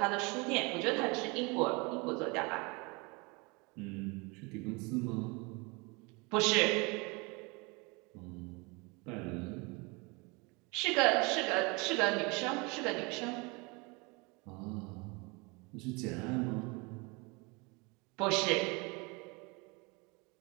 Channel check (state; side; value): quieter; left; 28.1 dB